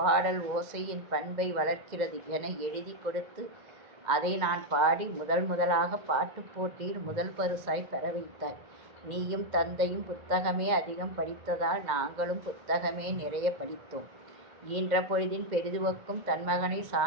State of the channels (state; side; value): late; left; 2.1 ms